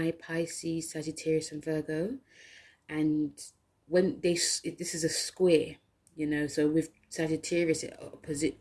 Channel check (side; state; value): both; identical; correlation 1.00